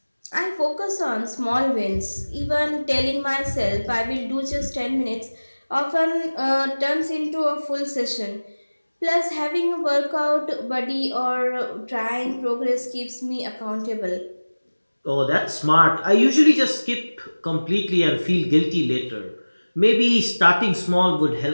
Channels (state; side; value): inverted; both; correlation -1.00